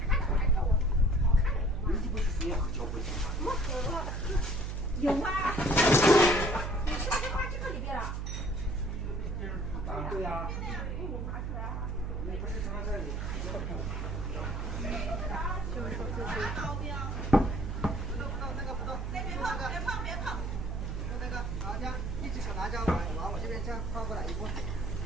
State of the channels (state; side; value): noise; right; hum, 3 dB below the sound